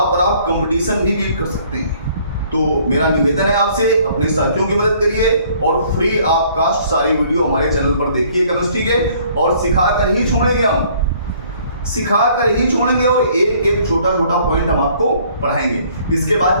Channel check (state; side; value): inverted; both; correlation -0.59